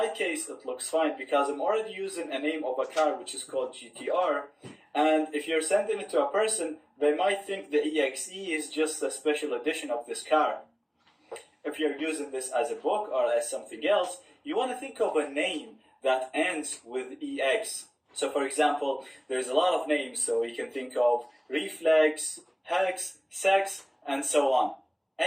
case, it looks fine because I'm already using a name of a car which is called GTR. And if you're sending it to a person, they might think the EXE is just a special edition of this car. If you're using this as a book or as something else, you want to think of a name that ends with EX. So for example, there's a lot of names, so you can think of reflex, hex, sex, and so on.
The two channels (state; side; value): identical; both; correlation 1.00